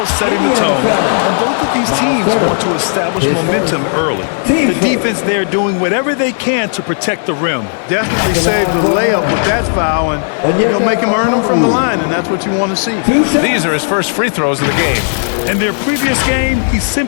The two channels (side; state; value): right; silent; digital silence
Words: setting the tone. And both of these teams want to establish momentum early. The defense there doing whatever they can to protect the rim. Definitely saved the layup with that foul, and you'll make him earn them from the line, and that's what you want to see. These are his first free throws of the game. In their previous game, he